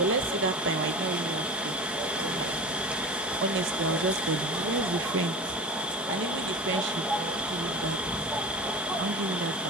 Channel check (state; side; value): normal; both; correlation 0.31